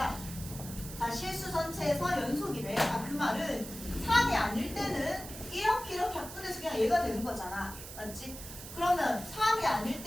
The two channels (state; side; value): noise; right; hiss, 12 dB below the sound